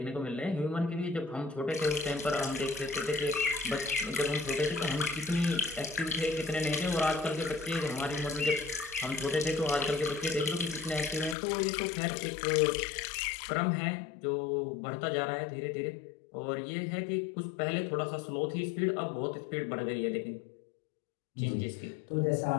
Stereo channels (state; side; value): drops out; right; at 11.4 s